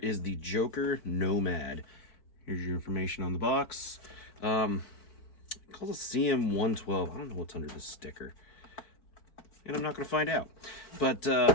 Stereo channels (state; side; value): late; right; 4.6 ms